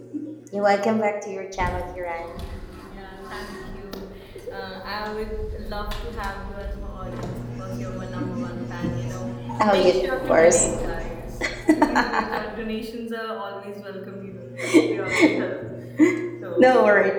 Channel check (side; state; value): both; identical; correlation 1.00